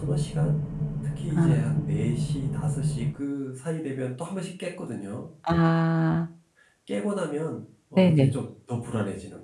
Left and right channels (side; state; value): both; identical; correlation 1.00